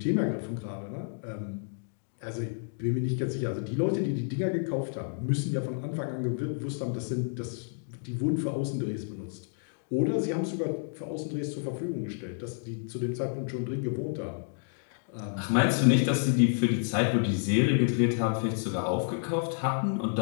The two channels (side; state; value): right; silent; digital silence